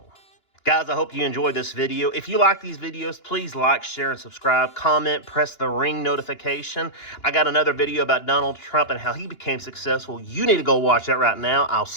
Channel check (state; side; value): late; right; 2.9 ms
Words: Guys, I hope you enjoyed this video. If you like these videos, please like, share, and subscribe. Comment, press the ring notification. I got another video about Donald Trump and how he became successful. You need to go watch that right now. I'll